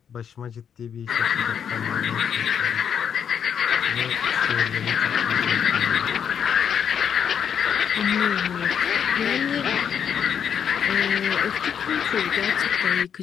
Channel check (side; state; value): right; quieter; 8.0 dB